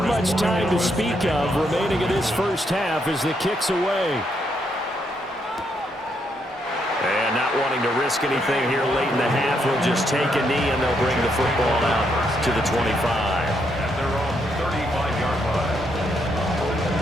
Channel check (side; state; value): both; normal; correlation 0.77